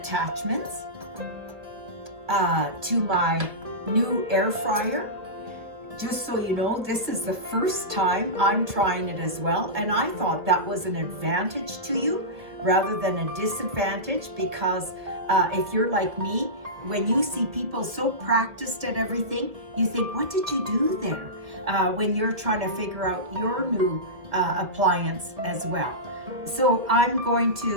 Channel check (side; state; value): left; late; 1.6 ms